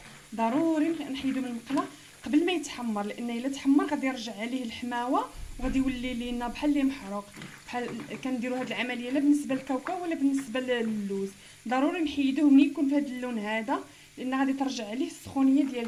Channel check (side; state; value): both; identical; correlation 1.00